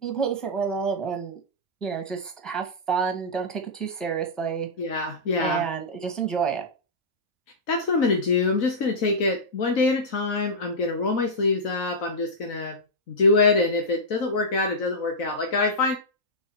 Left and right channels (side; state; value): both; normal; correlation -0.10